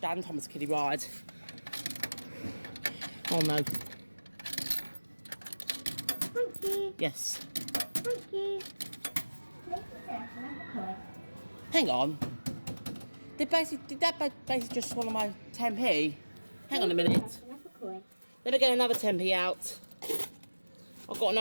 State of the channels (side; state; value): both; inverted; correlation -1.00